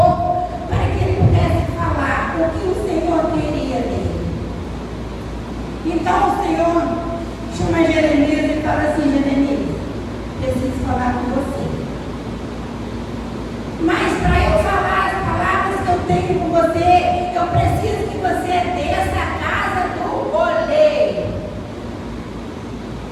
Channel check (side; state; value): both; identical; correlation 1.00